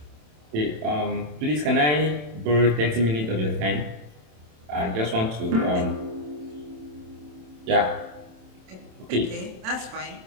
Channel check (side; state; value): left; late; 27 ms